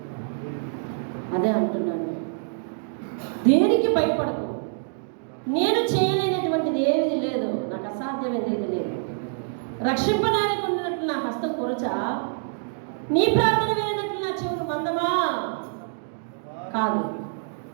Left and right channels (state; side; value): silent; left; digital silence